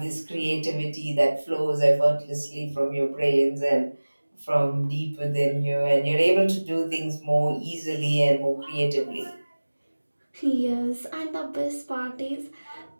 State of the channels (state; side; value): inverted; both; correlation -1.00